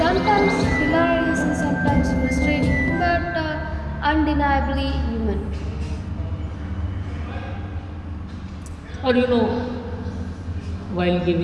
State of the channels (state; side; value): identical; both; correlation 1.00